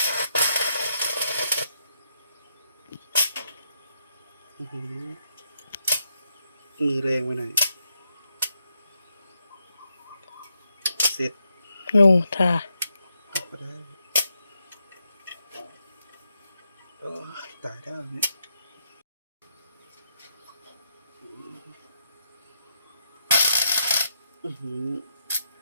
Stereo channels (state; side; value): inverted; both; correlation -0.80